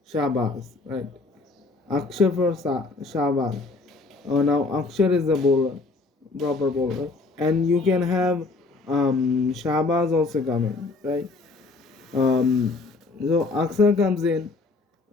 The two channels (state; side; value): quieter; right; 3.6 dB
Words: Shahbaz, right? Akshar for Shahbaz. Now Akshar is the bowler, proper bowler, and you can have Shahbaz also come in, right? Um, so Akshar comes in